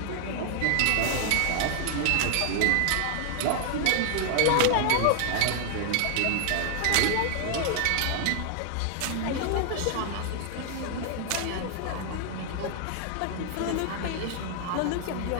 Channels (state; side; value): different; both; correlation 0.00